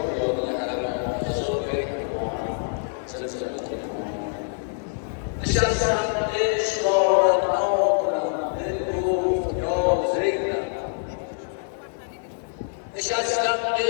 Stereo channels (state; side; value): silent; right; digital silence